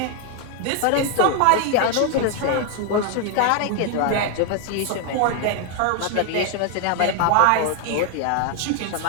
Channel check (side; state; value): both; different; correlation 0.01